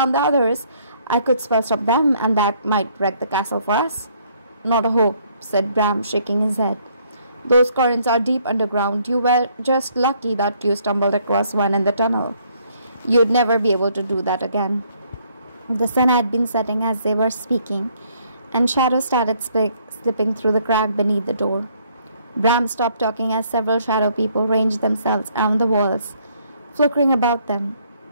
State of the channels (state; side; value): inverted; both; correlation -0.66